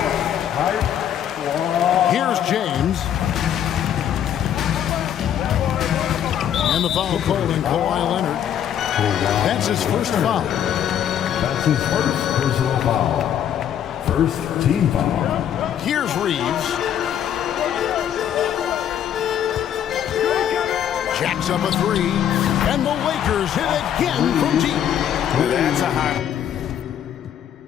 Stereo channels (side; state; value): right; quieter; 9.8 dB